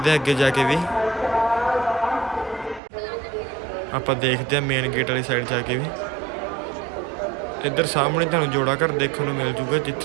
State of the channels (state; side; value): drops out; left; at 2.8 s